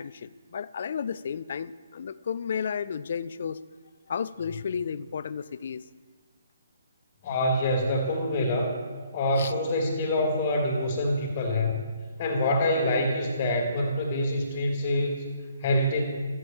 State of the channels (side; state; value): both; inverted; correlation -0.64